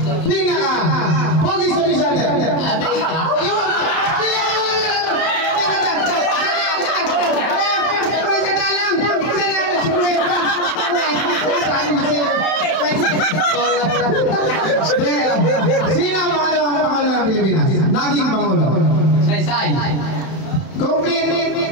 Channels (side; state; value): right; late; 31 ms